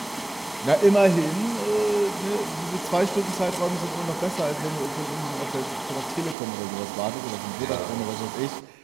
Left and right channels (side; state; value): left; drops out; at 6.4 s